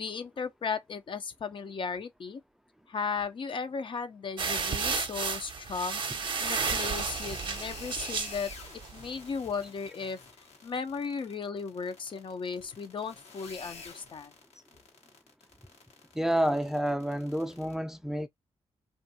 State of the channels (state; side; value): normal; both; correlation 0.43